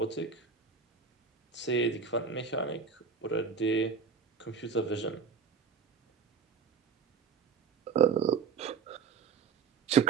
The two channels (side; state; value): left; quieter; 5.7 dB